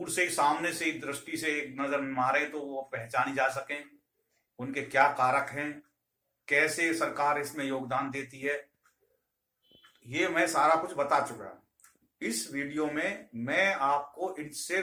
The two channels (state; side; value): identical; both; correlation 1.00